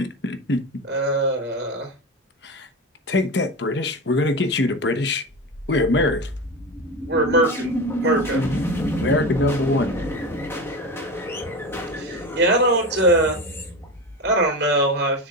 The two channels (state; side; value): normal; both; correlation 0.23